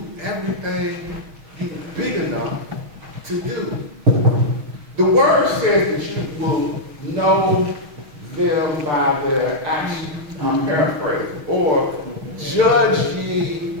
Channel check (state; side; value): late; left; 6.4 ms